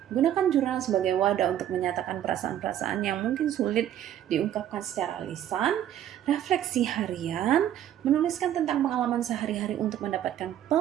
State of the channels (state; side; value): quieter; left; 11.1 dB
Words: gunakan jurnal sebagai wadah untuk menyatakan perasaan-perasaan yang mungkin sulit diungkapkan secara lisan, refleksi harian, menuliskan tentang pengalaman sehari-hari untuk mendapatkan